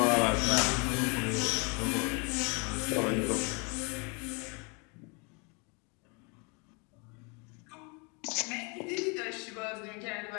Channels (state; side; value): quieter; right; 32.3 dB